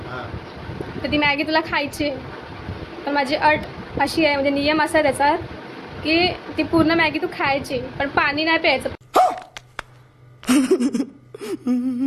तर ती मॅगी तुला खायची आहे. पण माझी अट अशी आहे, म्हणजे नियम असा आहे त्याचा, की ती पूर्ण मॅगी तू खायची, पण पाणी नाही प्यायचं.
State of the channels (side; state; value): both; identical; correlation 1.00